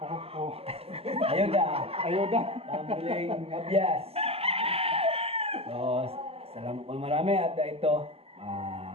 Ayuda. Ayuda. Pambiling abyas. So, salamat po marami at ito,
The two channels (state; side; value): late; left; 0.29 ms